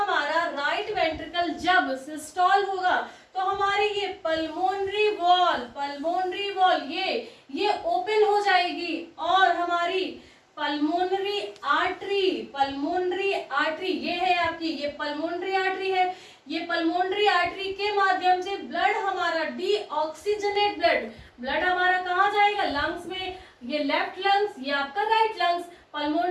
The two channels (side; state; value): both; identical; correlation 1.00